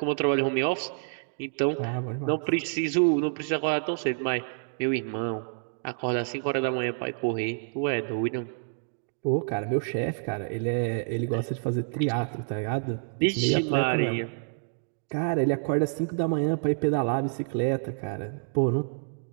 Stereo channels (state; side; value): silent; left; digital silence